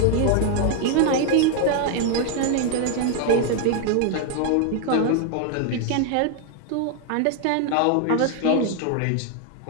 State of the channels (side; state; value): both; different; correlation 0.00